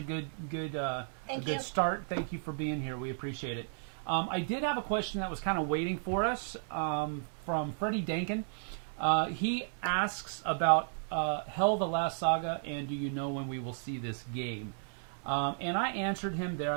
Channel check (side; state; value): left; silent; digital silence